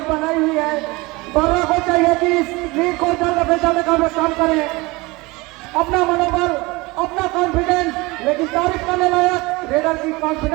बनाई हुई है। बर्रा को चाहिए कि इस लीड को जल्द से जल्द काम करें। अपना मनोबल, अपना कॉन्फिडेंस, लेकिन तारीफ करने लायक रेडर की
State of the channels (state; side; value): quieter; left; 23.4 dB